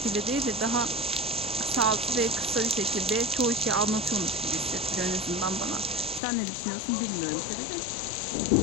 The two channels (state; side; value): drops out; right; at 6.2 s